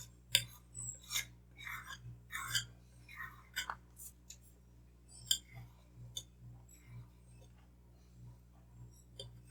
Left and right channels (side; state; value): both; identical; correlation 1.00